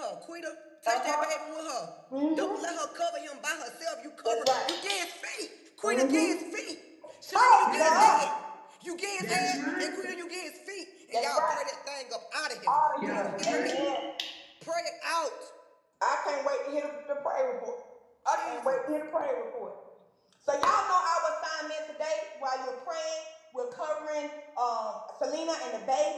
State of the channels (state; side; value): identical; both; correlation 1.00